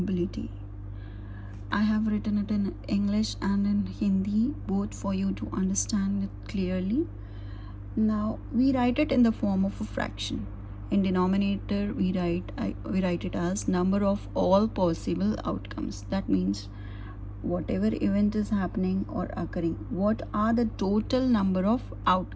I have written it in English and in Hindi, both, for you to understand it clearly. Now we write it in the form of a fraction. In denominator we write it as number of all possible outcomes. That means whatever event is happening or occurring, what are the total number of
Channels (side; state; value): both; identical; correlation 1.00